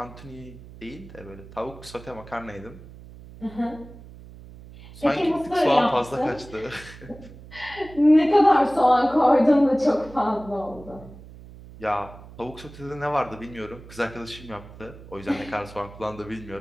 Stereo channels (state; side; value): noise; right; hum, 18 dB below the sound